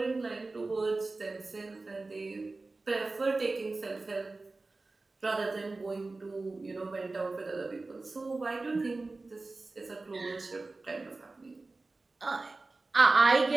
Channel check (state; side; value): quieter; left; 3.4 dB